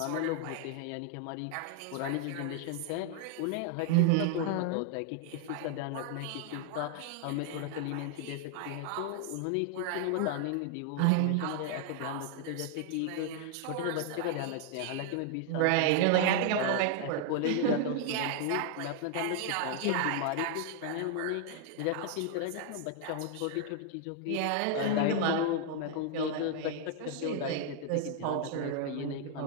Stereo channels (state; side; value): different; both; correlation 0.00